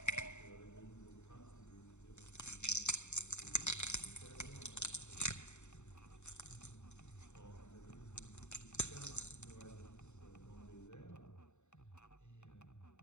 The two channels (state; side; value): late; right; 0.83 ms